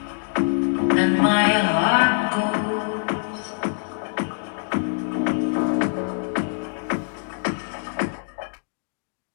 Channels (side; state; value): right; silent; digital silence